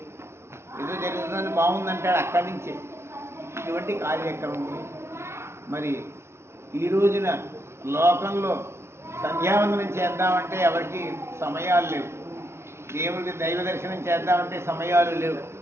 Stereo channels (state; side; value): late; left; 0.13 ms